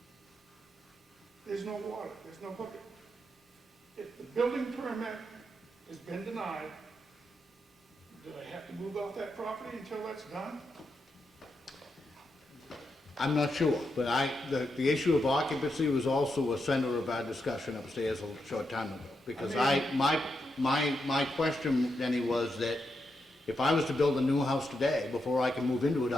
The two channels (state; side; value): normal; both; correlation 0.84